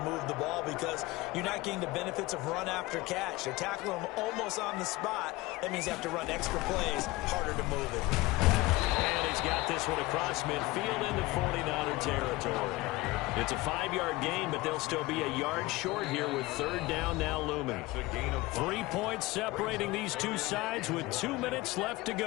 move the ball because you're not getting the benefits of run after catch. They're tackling them almost on the spot. That means you have to run extra plays, harder to move it. And he's got this one across midfield into 49er territory. It's a 5-yard gain, but they'll still be a yard short here with 3rd down now looming. 3 points separating these two sides with 2 minutes left to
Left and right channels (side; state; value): right; quieter; 20.3 dB